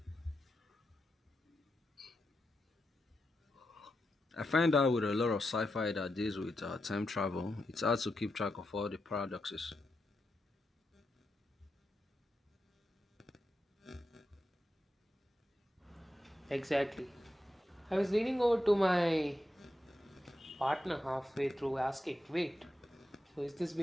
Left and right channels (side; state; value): both; normal; correlation 0.87